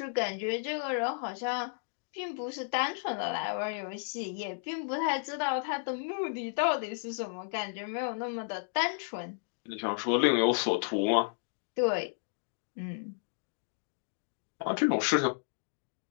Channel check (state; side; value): silent; right; digital silence